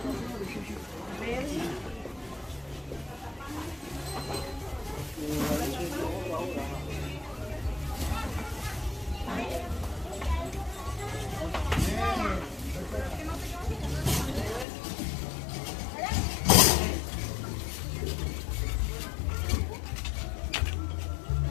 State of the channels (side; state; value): right; drops out; at 14.7 s